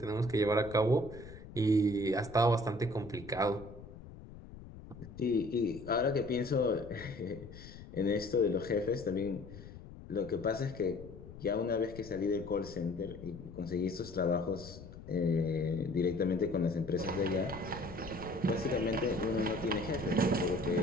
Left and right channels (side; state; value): left; noise; rumble, 15 dB below the sound